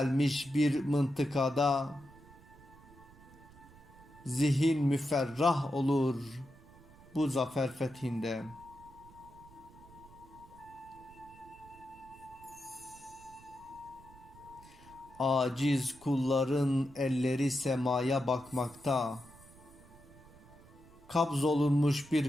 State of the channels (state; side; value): noise; right; rumble, 22 dB below the sound